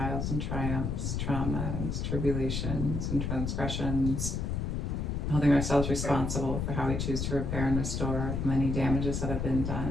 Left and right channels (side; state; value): left; noise; rumble, 1 dB below the sound